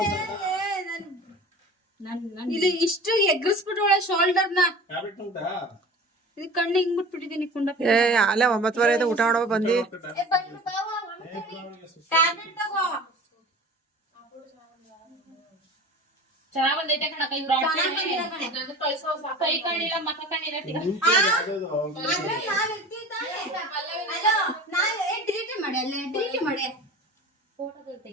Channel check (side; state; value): both; normal; correlation 0.39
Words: ಇಲ್ಲಿ ಇಷ್ಟು ಎಗ್ರಿಸ್ಬಿಟ್ಟು ಶೋಲ್ಡರ್ನ ಟ್ಯಾಬ್ಲೆಟ್ ಉಂಟಾ? ಇದು ಕಣ್ಣು ಹಿಂಗ್ ಬಿಟ್ಬಿಟ್ಟಿದೀನಿ ಕುಂಡ. ಅಲ್ಲೇ 9:30 ಆಯ್ತು, ಊಟ ಮಾಡೋ ಬಂದಿ. ಟ್ಯಾಬ್ಲೆಟ್ ತಗೋ. ಚೆನ್ನಾಗ್ ಬಂದೈತೆ ಕಣಕ್ಕ. ಇವ್ರು ಕಳ್ಸೋ ಕೈ ಕಾಣಿಲ್ಲ, ಮಕ್ಕ ಕಾಣಿಲ್ಲ. ಆದ್ರೆ ನಾವ್ ಇರ್ತೀವಿ ತಾನೇ. ಅಲೋ, ಡಿಲೀಟ್ ಮಾಡಿ, ಅಲ್ಲೇ ಡಿಲೀಟ್ ಮಾಡಿ. ಫೋಟೋದಲ್ಲಿ